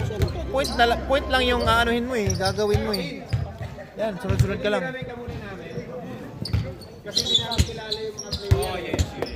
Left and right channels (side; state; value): both; identical; correlation 1.00